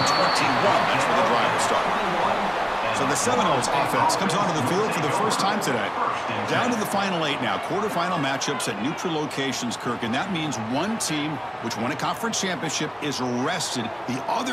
21. That's where the drive will start. So the Seminoles offense comes onto the field for the first time today. Down to the final 8 now. Quarterfinal matchups at neutral locations, Kirk. And that means one team, which won a conference championship, is rested. The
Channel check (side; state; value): both; identical; correlation 1.00